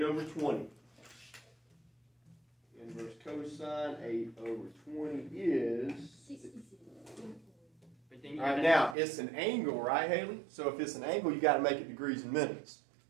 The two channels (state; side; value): drops out; left; at 9.0 s